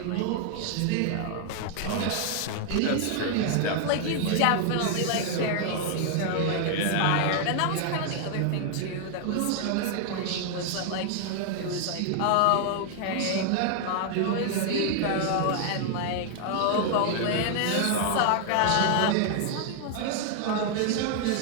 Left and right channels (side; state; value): both; different; correlation 0.00